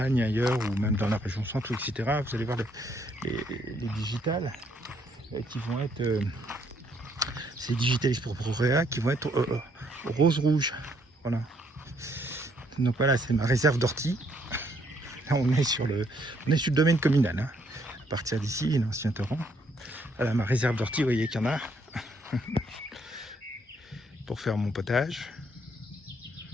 ailleurs, ou même dans la région centre, etc., vous allez voir les digitales qui vont être... c'est Digitalis purpurea qui vont être rose-rouge. Voilà. Donc voilà, c'est ma réserve d'ortie. Là, on est sur le domaine communal. Hein. À partir d'ici, l'ancien torrent. Voilà, ma réserve d'ortie, vous voyez qu'il y en a. Pour faire mon potage.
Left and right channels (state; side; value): normal; both; correlation 0.69